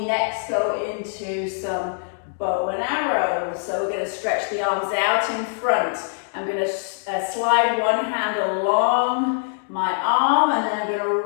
next go into some bow and arrow. So we're going to stretch the arms out in front. I'm going to slide one hand along my arm and then I'm going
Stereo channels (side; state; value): right; silent; digital silence